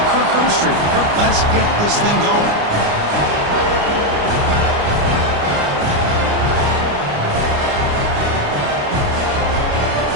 Kirk Herbstreit. Kirk, let's get this thing going.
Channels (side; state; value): left; late; 29 ms